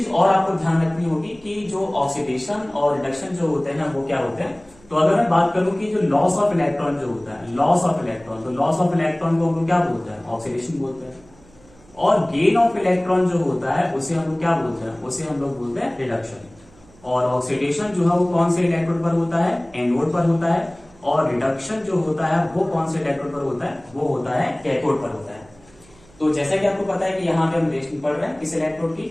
और आपको ध्यान रखनी होगी कि जो ऑक्सीडेशन और रिडक्शन जो होते हैं ना वो क्या होते हैं। तो अगर मैं बात करूं कि जो लॉस ऑफ इलेक्ट्रॉन जो होता है, लॉस ऑफ इलेक्ट्रॉन, तो लॉस ऑफ इलेक्ट्रॉन को हम लोग क्या बोलते हैं, ऑक्सीडेशन बोलते हैं। और गेन ऑफ इलेक्ट्रॉन जो होता है उसे हम लोग क्या बोलते हैं, उसे हम लोग बोलते हैं रिडक्शन। और ऑक्सीडेशन जो है वो कौन से इलेक्ट्रोड पर होता है, एनोड पर होता है। और रिडक्शन जो होता है वो कौन से इलेक्ट्रोड पर होता है, वो होता है कैथोड पर होता है। तो जैसा कि आपको पता है कि यहाँ पे हम रिएक्शन पढ़ रहे हैं किस इलेक्ट्रोड की,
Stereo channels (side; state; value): right; noise; hum, 27 dB below the sound